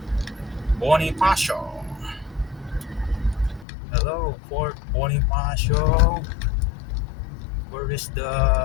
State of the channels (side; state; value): right; drops out; at 3.7 s